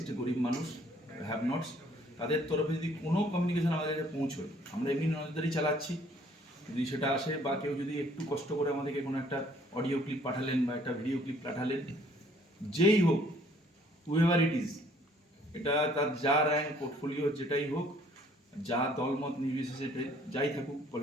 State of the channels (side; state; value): both; normal; correlation 0.60